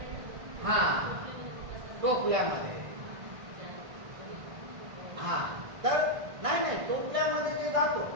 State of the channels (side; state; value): left; late; 1.6 ms